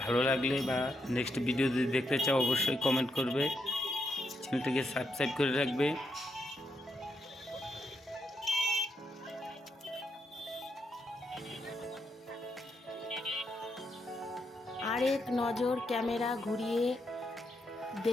ভালো লাগলে বা নেক্সট ভিডিও যদি দেখতে চাও অবশ্যই কমেন্ট করবে, চ্যানেলটিকে সাবস্ক্রাইব করে রাখবে। আরেক নজর ক্যামেরা ঘুরিয়ে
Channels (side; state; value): both; normal; correlation 0.80